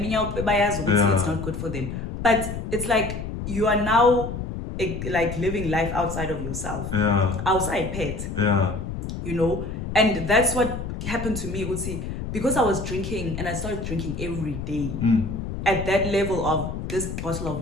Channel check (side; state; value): left; noise; rumble, 6 dB below the sound